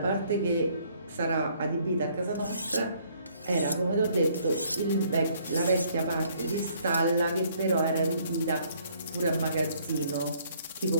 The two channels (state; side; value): inverted; both; correlation -0.64